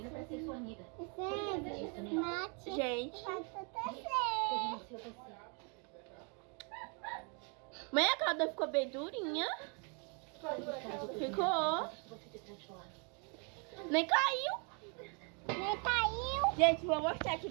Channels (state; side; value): quieter; left; 36.0 dB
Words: pra ser sua amiga. Gente, Você renunciou a você. mãe, a calda ficou bem durinha. Ficou. Você se transforma. Nem caiu. Nem caiu. Gente, vou mostrar aqui